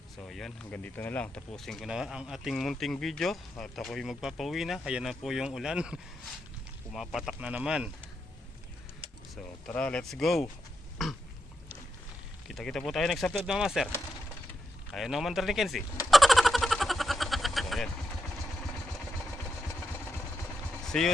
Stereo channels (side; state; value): both; normal; correlation 0.85